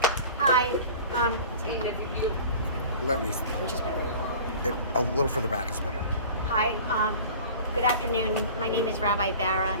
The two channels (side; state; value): both; inverted; correlation -0.41